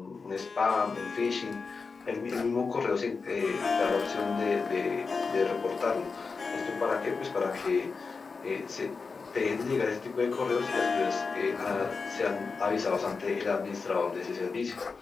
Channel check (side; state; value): right; quieter; 4.7 dB